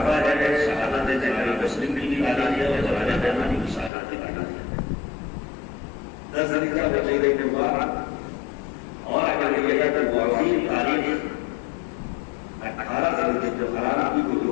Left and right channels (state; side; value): drops out; right; at 3.9 s